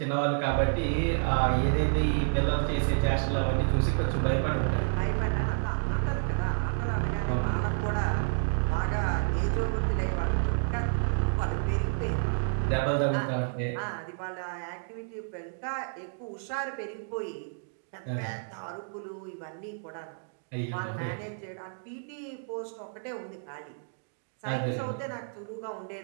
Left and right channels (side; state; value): left; silent; digital silence